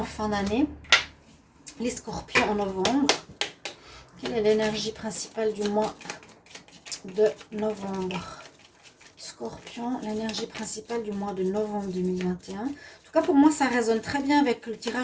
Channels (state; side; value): identical; both; correlation 1.00